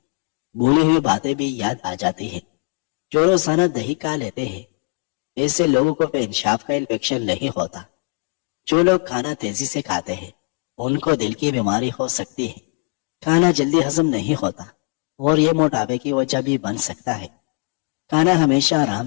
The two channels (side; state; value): right; quieter; 37.0 dB